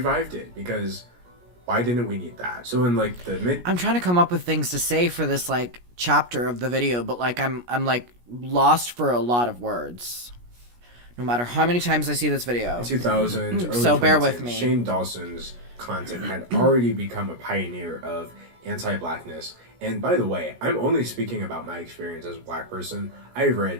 it because why didn't we need that? So in like the I'm trying to come up with things to say for this like chapter of the video, but like I'm like lost for a lot of words. No matter how many times I see this video. 2000s, early so bear 2010s, with me. Shane Dawson's content had already become a pioneer of anti-blackness And by the way, I'm only speaking about my experience as a black person. I've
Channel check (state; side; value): late; left; 17 ms